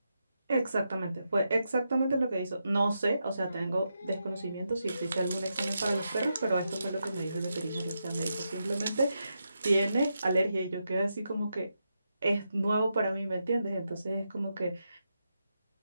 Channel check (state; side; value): inverted; both; correlation -0.85